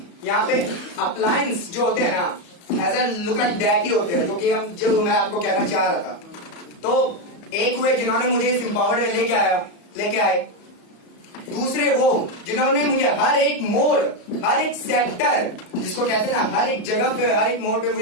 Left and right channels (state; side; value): late; right; 34 ms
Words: यहाँ पे अप्लायंस जो होते हैं ना as a look at that ही होते हैं, जो मैं आपको कहना चाह रहा था। तो एक वे जिन्होंने मुझे इस एम्पावर्ड में लेके आए, दूसरे वो जिन्होंने मुझे हर एक मोड़, हर एक सेक्टर जिसको कहते हैं ना, हर एक जगह पे, हर एक मोड़ पे